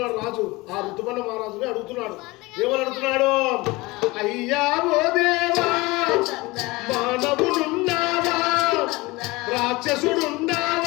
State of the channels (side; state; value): right; quieter; 22.3 dB